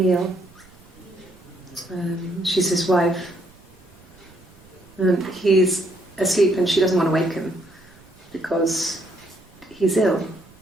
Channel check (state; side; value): noise; right; rumble, 27 dB below the sound